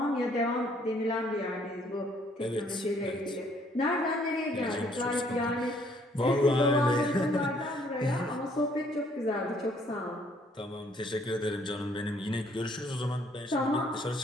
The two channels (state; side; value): normal; both; correlation 0.64